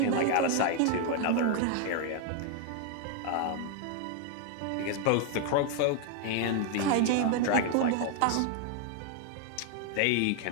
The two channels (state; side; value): different; both; correlation 0.00